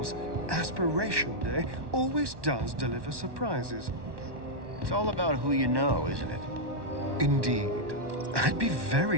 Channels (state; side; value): late; left; 1.1 ms